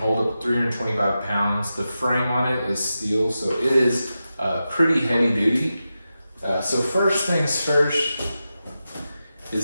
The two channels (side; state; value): both; inverted; correlation -0.91